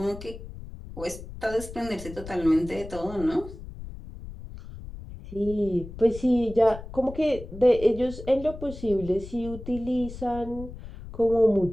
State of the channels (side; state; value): left; noise; rumble, 13 dB below the sound